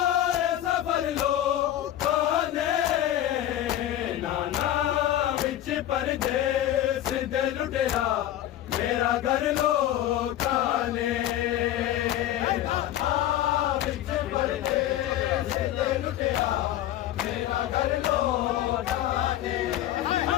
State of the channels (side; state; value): right; quieter; 12.7 dB